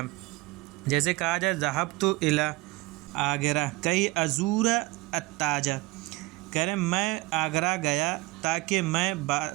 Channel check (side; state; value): left; quieter; 22.3 dB